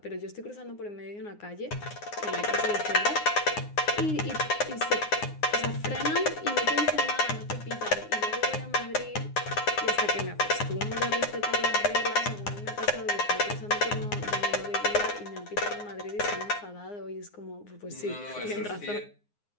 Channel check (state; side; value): late; right; 9.7 ms